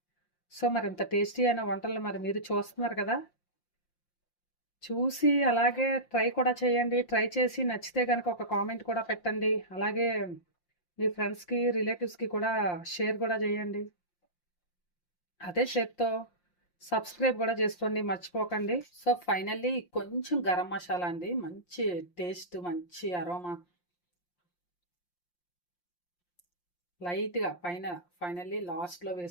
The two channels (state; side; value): late; right; 5.7 ms